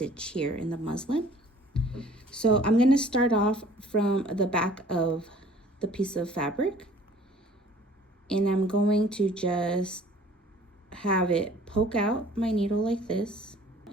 here in the muslin. So I'm going to start off from the back of the piece of fabric, and I'm going to just have it poke out my needle like this,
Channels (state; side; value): normal; both; correlation 0.52